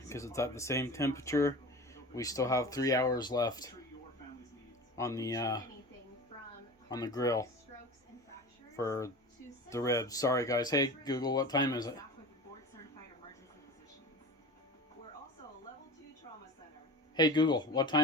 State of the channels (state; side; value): normal; both; correlation 0.34